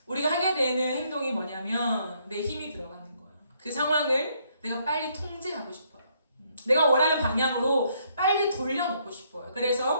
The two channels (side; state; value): both; inverted; correlation -0.70